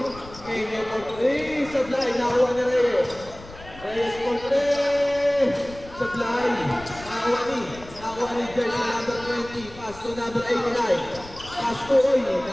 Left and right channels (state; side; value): noise; left; rumble, 18 dB below the sound